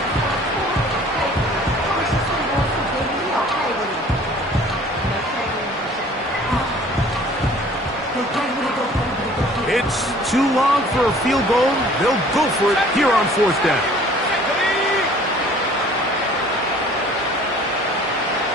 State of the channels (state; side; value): normal; both; correlation 0.51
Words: It's too long for a field goal. They'll go for it here on 4th down.